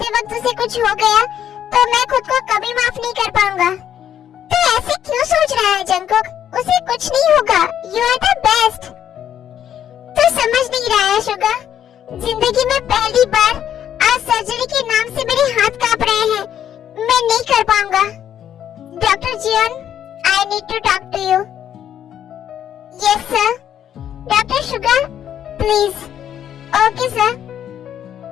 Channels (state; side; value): quieter; right; 10.0 dB